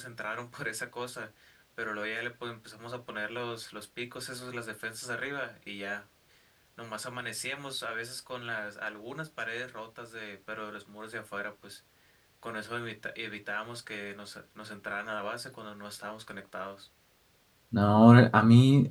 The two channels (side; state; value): both; identical; correlation 1.00